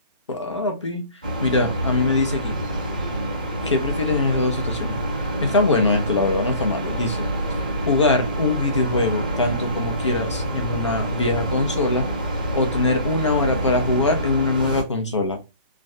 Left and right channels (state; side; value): inverted; both; correlation -0.47